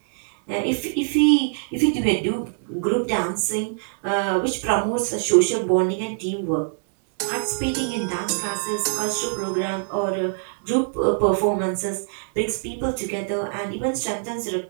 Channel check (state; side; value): silent; left; digital silence